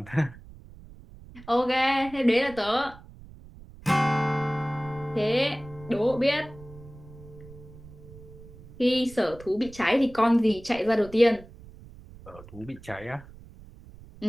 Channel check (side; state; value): right; noise; rumble, 19 dB below the sound